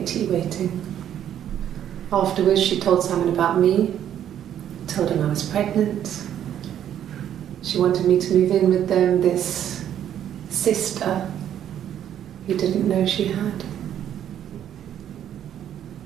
tea waiting. Afterwards, she told Simon about me, told him I was pregnant. She wanted me to move in with them, this sister he didn't know she had.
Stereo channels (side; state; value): left; quieter; 10.3 dB